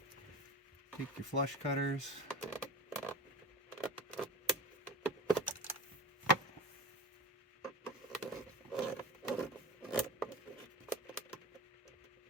Take your flush cutters.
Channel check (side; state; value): both; normal; correlation 0.30